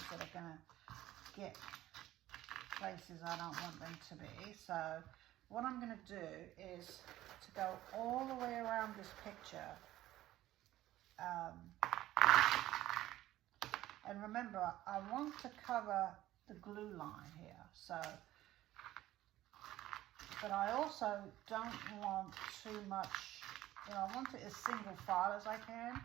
that are going to get places I don't want them to be. So what I'm going to do is to go all the way around this picture. And remember, I want to cover the glue line here, so, but I also don't want too much, you know, I want it as single file as I can,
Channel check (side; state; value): left; quieter; 14.8 dB